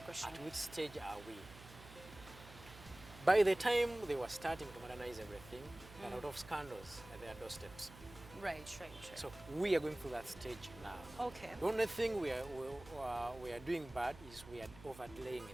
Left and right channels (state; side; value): noise; right; hum, 18 dB below the sound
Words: question. At which stage are we? By the time they were starting to modernize everything, there are a lot of scandals at their doorsteps. Right, right, right. So we are going through that stage now. Okay. The only thing we are doing bad is we are overlaying